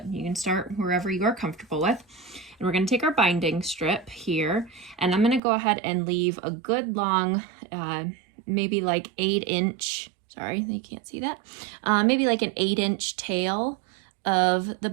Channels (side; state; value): left; drops out; at 5.4 s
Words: you can start wherever you are comfortable with. And we're gonna take our binding strip here, and I'm gonna go ahead and leave a good long, maybe like 8-inch, sorry, you can't see that, maybe like an 8-inch tail of the